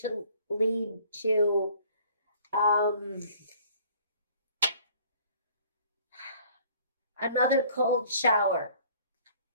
lead to another cold shower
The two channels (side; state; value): both; inverted; correlation -0.56